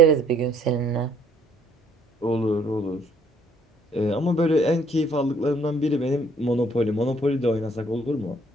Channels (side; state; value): both; normal; correlation 0.63